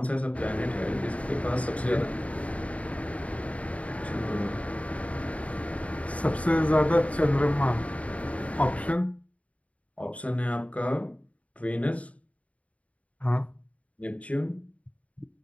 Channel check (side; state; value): right; late; 0.067 ms